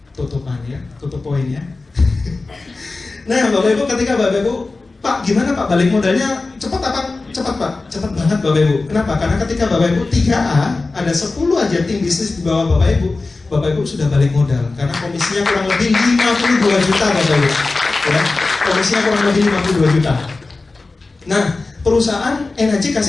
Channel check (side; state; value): right; quieter; 3.6 dB